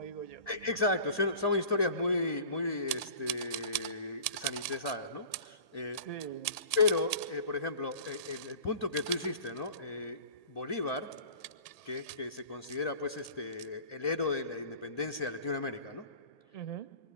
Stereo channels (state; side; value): late; right; 1.8 ms